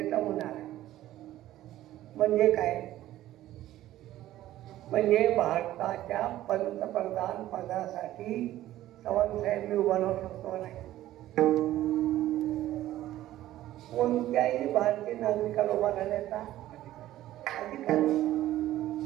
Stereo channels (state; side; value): quieter; left; 14.2 dB